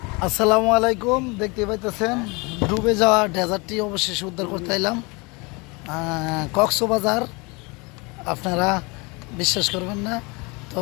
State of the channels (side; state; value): right; quieter; 27.5 dB